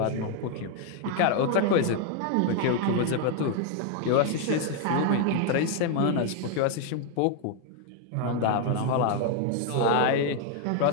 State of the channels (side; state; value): both; different; correlation 0.00